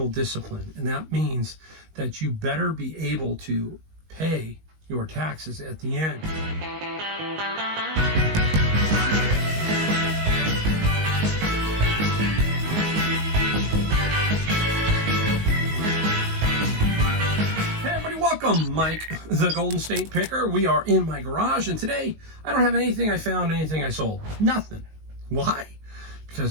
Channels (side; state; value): left; late; 19 ms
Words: discipline. And that means that you better be able to pay your taxes at the end. Welcome, Mike, the Golden State Picker. We are in my garage, and today I don't have anything I found, anything I sold. Nothing. Why?